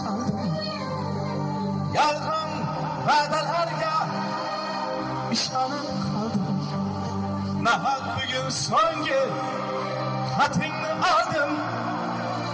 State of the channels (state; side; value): identical; both; correlation 1.00